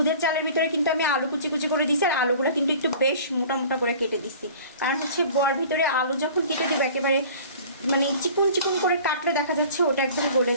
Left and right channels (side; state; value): both; inverted; correlation -0.45